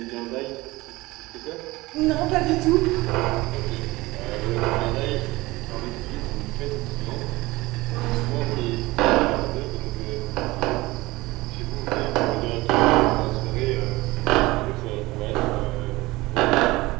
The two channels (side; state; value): left; quieter; 20.5 dB